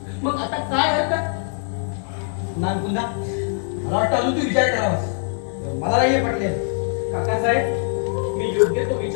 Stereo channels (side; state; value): right; silent; digital silence